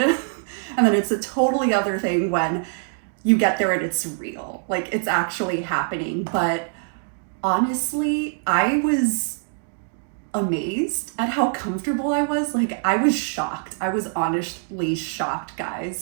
and then it's a totally other thing when you get there and it's real, like it's actually happening. But honestly, I was amazed at how comfortable I was. Like, I was shocked. I was honestly shocked,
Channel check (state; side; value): silent; left; digital silence